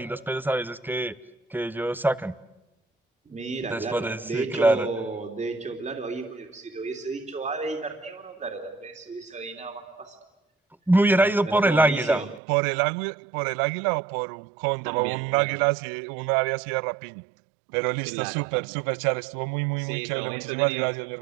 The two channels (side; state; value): left; drops out; at 12.4 s